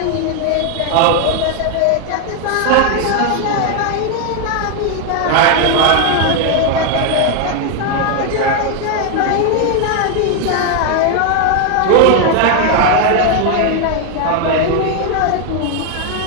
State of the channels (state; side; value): different; both; correlation 0.01